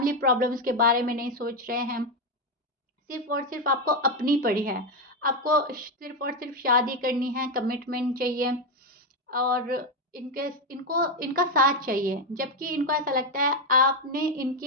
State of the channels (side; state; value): both; normal; correlation 0.07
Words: प्रॉब्लम्स के बारे में नहीं सोच रहे हैं। सिर्फ़ और सिर्फ़ आपको अपनी पड़ी है। आपको सिर्फ़ और सिर्फ़ शादी करनी है, कमिटमेंट चाहिए, और इनके इनको इनका साथ चाहिए। जबकि इनको ऐसा लगता है आपने